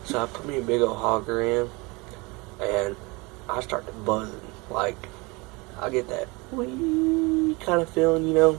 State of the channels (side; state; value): left; quieter; 26.1 dB